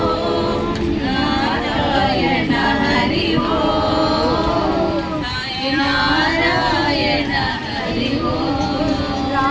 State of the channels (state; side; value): identical; both; correlation 1.00